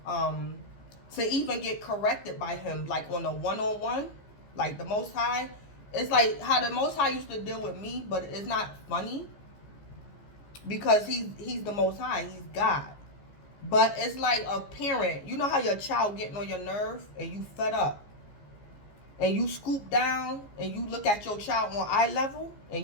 To even get corrected by him, like on a one-on-one, like the Most High, it's like how the Most High used to deal with me, but it's not funny because he's the Most High, he's God. But it's like a parent. You know how your child getting on your nerve and you fed up, and you scoop down and you look at your child on eye level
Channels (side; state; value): right; late; 15 ms